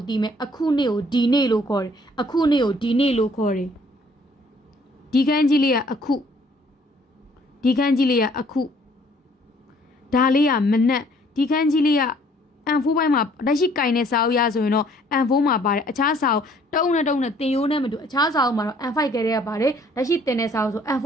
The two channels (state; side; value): normal; both; correlation 0.60